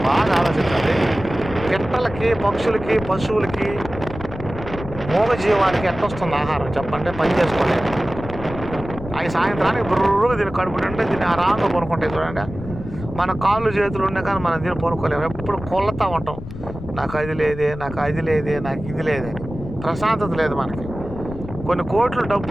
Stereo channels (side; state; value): left; noise; rumble, 11 dB below the sound